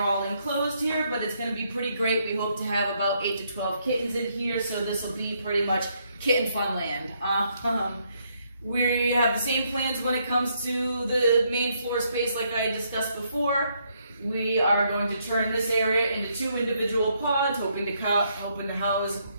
all enclosed here, but it's going to be pretty great. We hope to have about 8 to 12 kittens in here, so this will be pretty much kitten fun land. We have the same plans when it comes to the main floor space like I discussed before. We are going to turn this area into 2 individual pods, hoping to house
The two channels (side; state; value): both; inverted; correlation -0.73